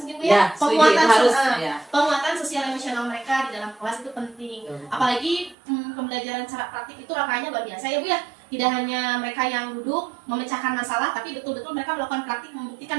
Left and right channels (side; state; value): left; drops out; at 5.6 s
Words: mungkin Bu ya. Penguatan sosial emosional mereka di dalam kelas itu penting. Apalagi pembelajaran secara praktik itu rangkaiannya luar biasa ya Bu ya. Tidak hanya mereka yang duduk memecahkan masalah, tapi betul-betul mereka melakukan praktik